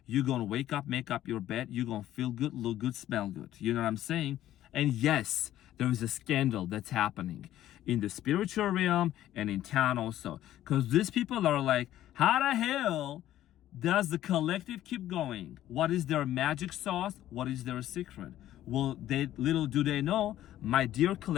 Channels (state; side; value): quieter; right; 13.1 dB